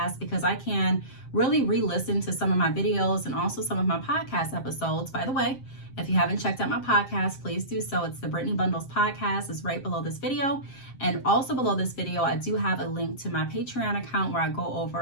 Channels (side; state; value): right; late; 7.6 ms